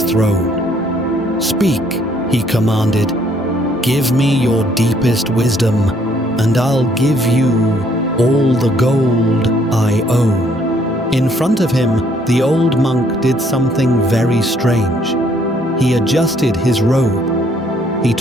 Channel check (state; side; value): normal; both; correlation 0.65